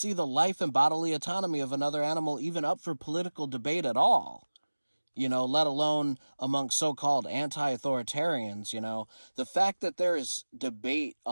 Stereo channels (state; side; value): inverted; both; correlation -1.00